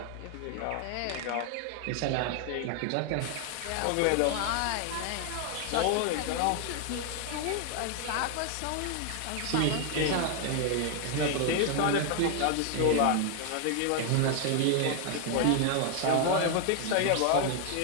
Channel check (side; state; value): both; different; correlation 0.00